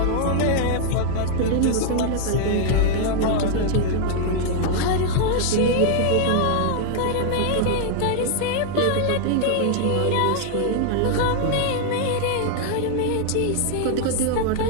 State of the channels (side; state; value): both; different; correlation 0.00